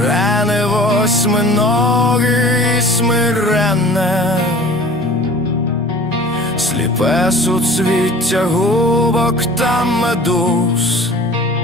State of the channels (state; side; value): normal; both; correlation 0.45